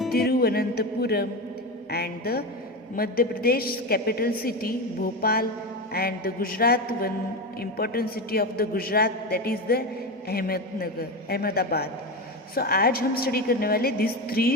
Thiruvananthapuram and the Madhya Pradesh capital city Bhopal and the Gujarat one important city of the Gujarat that is the Ahmedabad. So आज हम स्टडी करने वाले दिस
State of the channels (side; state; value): both; normal; correlation 0.19